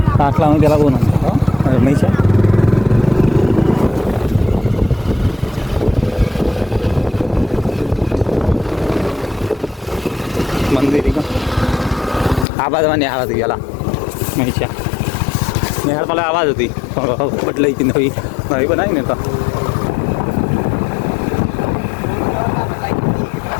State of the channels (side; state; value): right; drops out; at 12.5 s